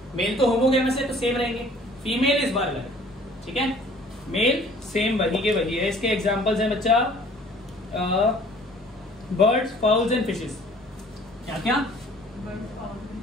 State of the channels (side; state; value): both; normal; correlation 0.52